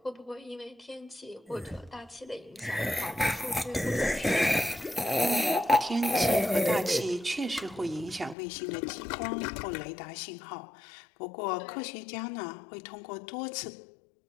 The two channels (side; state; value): right; drops out; at 8.3 s